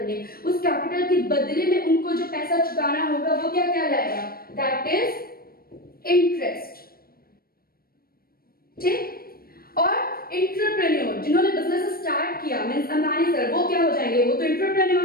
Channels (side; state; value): right; late; 0.44 ms